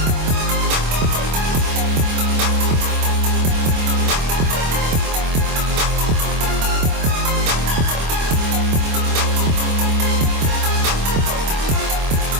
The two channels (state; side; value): late; left; 25 ms